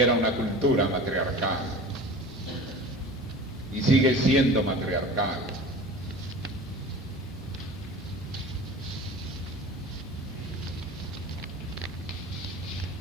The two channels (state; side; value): normal; both; correlation 0.38